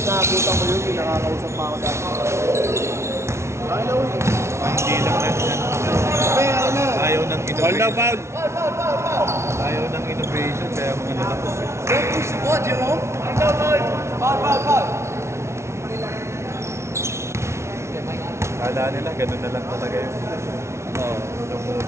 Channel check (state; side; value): late; left; 0.13 ms